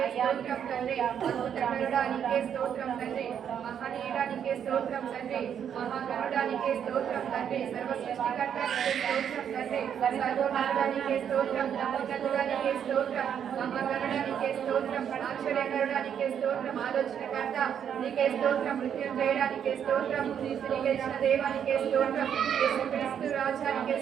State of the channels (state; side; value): quieter; left; 8.6 dB